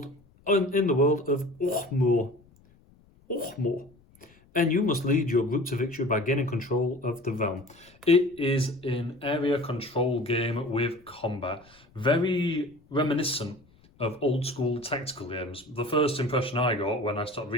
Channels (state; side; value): noise; left; rumble, 29 dB below the sound